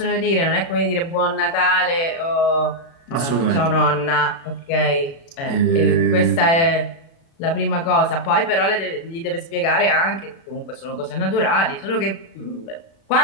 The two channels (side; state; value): right; late; 36 ms